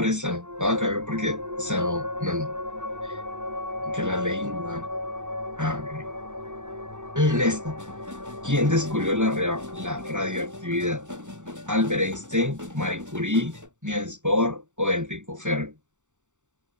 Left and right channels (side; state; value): left; late; 0.85 ms